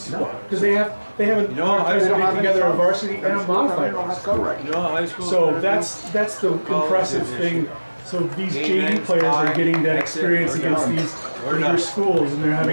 because they haven't put together a varsity and a modified varsity. So that's the impressive thing. So these JV players are getting that experience against these bigger schools, and they're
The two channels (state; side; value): inverted; both; correlation -1.00